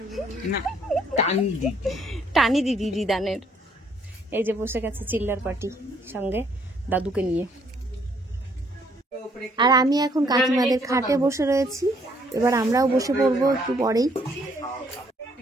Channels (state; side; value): normal; both; correlation 0.66